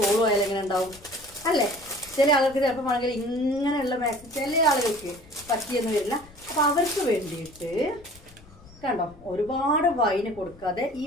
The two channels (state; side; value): noise; left; rumble, 23 dB below the sound